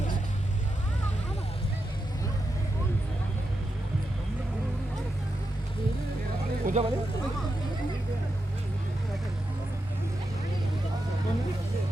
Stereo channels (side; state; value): both; normal; correlation 0.87